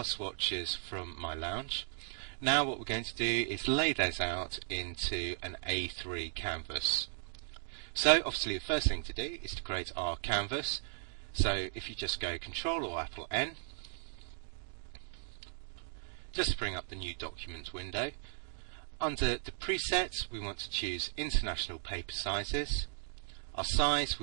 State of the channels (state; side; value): silent; left; 53 dB below the other